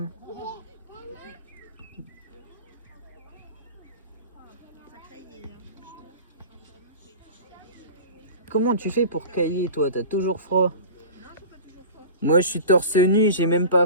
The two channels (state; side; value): inverted; both; correlation -0.35